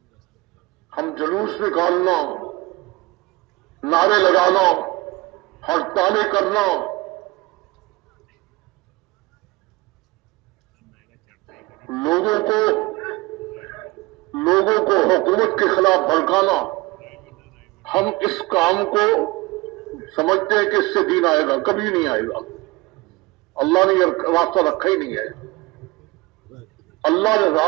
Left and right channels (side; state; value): left; quieter; 22.1 dB